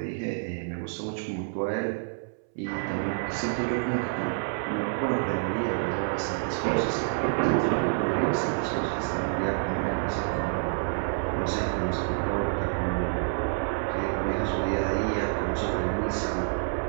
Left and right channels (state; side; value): silent; left; 59 dB below the other